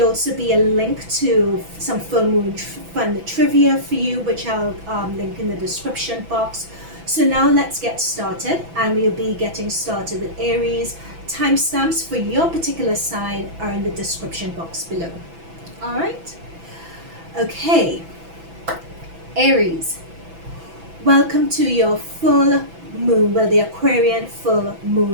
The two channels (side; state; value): left; late; 6.0 ms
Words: be a link to some full moon fun trivia for you, which I'll link in the description box. So now let's get started, and we'll be getting started with Aries. Timestamps for your particular sign are in the description box below. Alright? Okay, Aries, welcome to your full moon, well, the Aquarian full